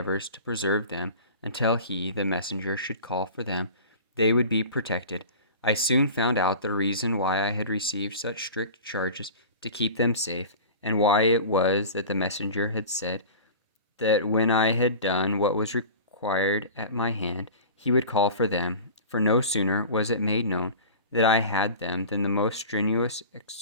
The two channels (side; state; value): both; inverted; correlation -0.36